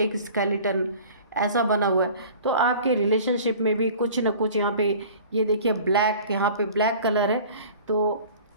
स्केलेटन, ऐसा बना हुआ है। तो आपके रिलेशनशिप में भी कुछ न कुछ यहाँ पे, ये देखिए ब्लैक, यहाँ पे ब्लैक कलर है। तो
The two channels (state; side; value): inverted; both; correlation -0.44